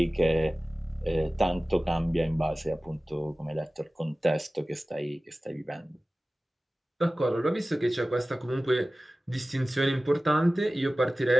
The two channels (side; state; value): both; normal; correlation 0.97